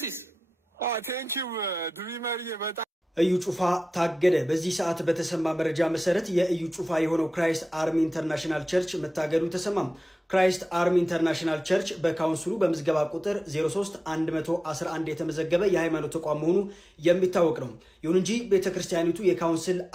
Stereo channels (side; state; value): both; normal; correlation 0.94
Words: ቴንኪው ድሪመር በጣም እዩ ጩፋ ታገደ። በዚህ ሰዓት በተሰማ መረጃ መሰረት የእዩ ጩፋ የሆነው ክራይስት አርሚ ኢንተርናሽናል ቸርች መታገዱ ተሰማም። ክራይስት አርሚ ኢንተርናሽናል ቸርች በካውንስሉ በምዝገባ ቁጥር 03111 የተመዘገበ የሃይማኖት ተቋም መሆኑ የሚታወቅ ነው። ይሁን እንጂ ቤተክርስቲያኒቱ የካውንስል